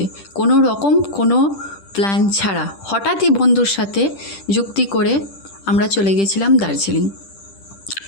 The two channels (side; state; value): right; late; 10 ms